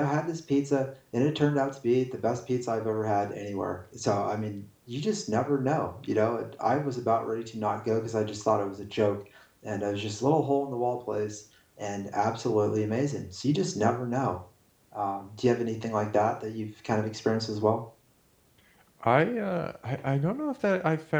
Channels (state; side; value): identical; both; correlation 1.00